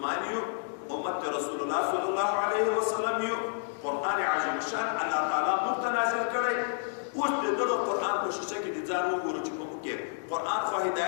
یو، امت رسول الله صلی الله علیه وسلم یو. قرآن عظیم شان الله تعالی موږ ته نازل کړی. اوس د دغه قرآن په شیشه کې د ځان وګورو چې په موږ کې قرآن خو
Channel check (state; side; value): silent; right; 58 dB below the other